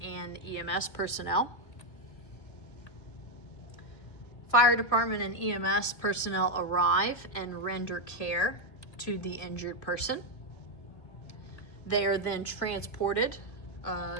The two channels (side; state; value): right; late; 2.0 ms